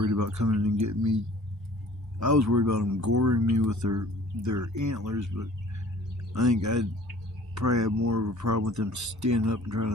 about coming and getting me. I was worried about them goring me with their antlers, but I think I'd probably have more of a problem with them standing up and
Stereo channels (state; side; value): normal; both; correlation 0.49